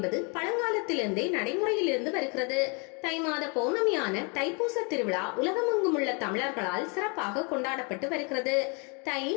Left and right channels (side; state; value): right; quieter; 33.8 dB